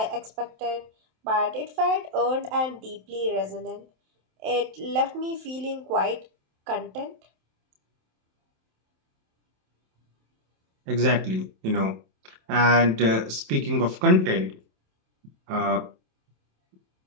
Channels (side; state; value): left; late; 27 ms